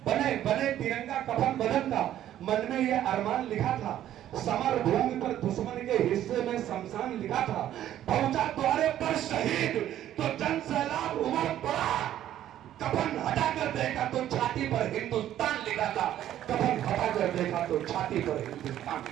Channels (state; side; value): quieter; left; 12.0 dB